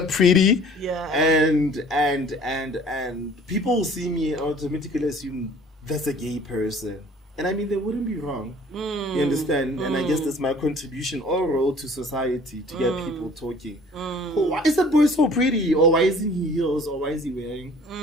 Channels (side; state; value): both; normal; correlation 0.51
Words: pretty. Yeah. And people will see me and automatically assume that's a gay person. And I mean, they wouldn't be wrong. You understand? And I guess that's my contribution or role to society, to get people talking. Oh, why is that boy so pretty? Or why isn't he heels? Or why is he wearing